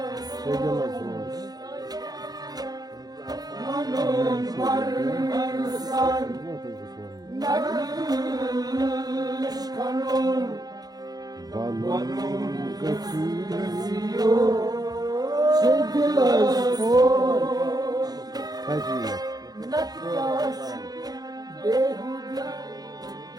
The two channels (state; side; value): late; left; 0.19 ms